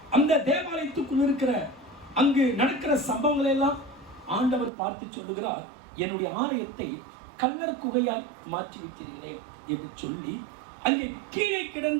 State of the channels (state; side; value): drops out; left; at 4.7 s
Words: அந்த தேவாலயத்துக்குள் இருக்கிற அங்கு நடக்கிற சம்பவங்களை எல்லாம் ஆண்டவர் பார்த்து சொல்லுகிறார், என்னுடைய ஆலயத்தை கல்லர் குகையால் மாற்றி வைக்கிறீர்களே என்று சொல்லி அங்கே கீழே